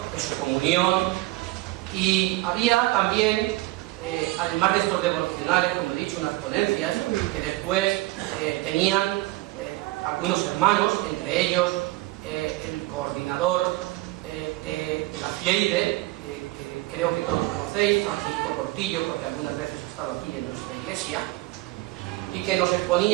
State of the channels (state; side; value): quieter; left; 19.4 dB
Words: de su comunión, y había también, además de estos devocionales, como he dicho, unas ponencias que después tenían algunos hermanos, entre ellos el coordinador de la FIEIDE, que creo que todos conocéis, Francisco Cortillo, porque algunas veces ha estado aquí en nuestra iglesia, y que nos